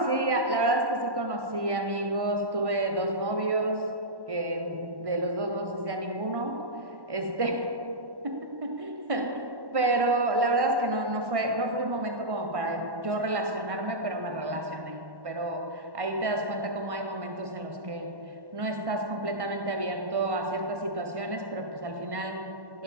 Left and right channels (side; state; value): left; late; 1.1 ms